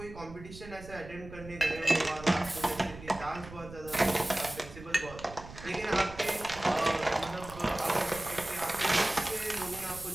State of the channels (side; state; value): right; noise; rumble, 15 dB below the sound